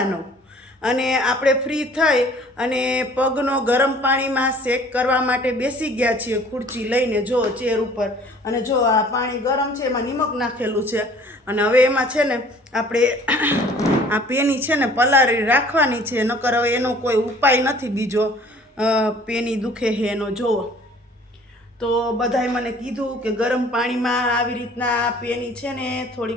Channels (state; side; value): normal; both; correlation 0.52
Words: અને આપણે ફ્રી થઈ અને પગનો ગરમ પાણીમાં શેક કરવા માટે બેસી ગયા છીએ ખુરચી લઈને. જો ચેર ઉપર, અને જો આ પાણી ગરમ છે, એમાં નિમક નાખેલું છે અને હવે એમાં છે ને આપણે આ પેની છે ને પલાળી રાખવાની છે, નકર હવે એનો કોઈ ઉપાય નથી બીજો. પેની દુખે છે એનો જોવો તો બધાએ મને કીધું કે ગરમ પાણીમાં આવી રીતના પેની છે ને